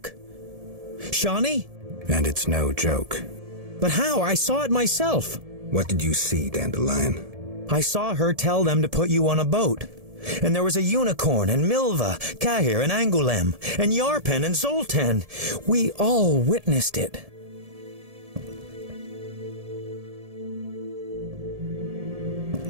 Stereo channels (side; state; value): left; late; 1.7 ms